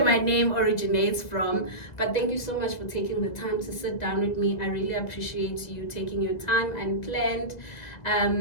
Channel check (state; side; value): late; right; 2.0 ms